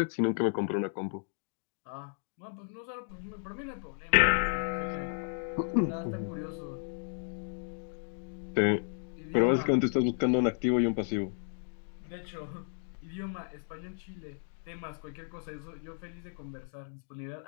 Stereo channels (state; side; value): silent; right; digital silence